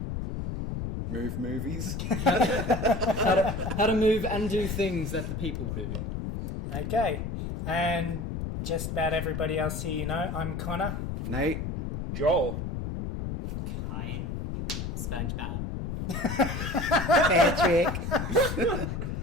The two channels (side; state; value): left; noise; rumble, 3 dB below the sound